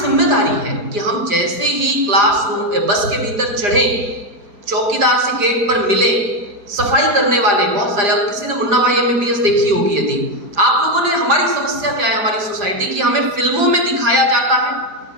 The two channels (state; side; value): late; left; 4.9 ms